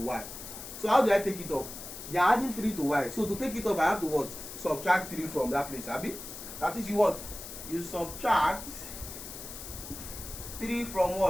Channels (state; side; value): noise; left; hiss, 11 dB below the sound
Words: So how do I take it off? They are adding 3 to y. So to take it off, I have to what? Subtract 3 from that place. Abi? That is you what? You subtract 3 from